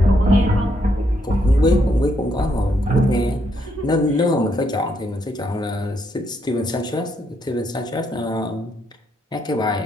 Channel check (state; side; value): normal; both; correlation 0.76